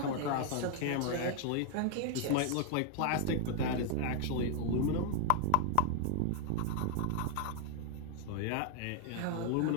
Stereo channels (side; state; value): both; different; correlation 0.00